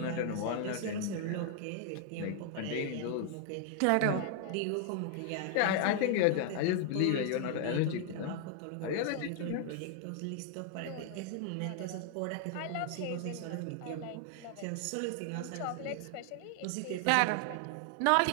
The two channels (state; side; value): different; both; correlation 0.00